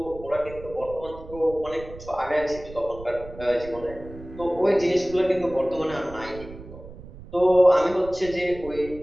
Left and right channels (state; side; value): noise; right; rumble, 16 dB below the sound